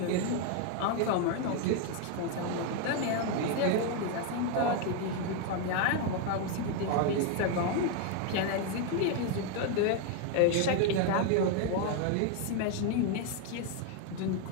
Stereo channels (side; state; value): both; different; correlation 0.01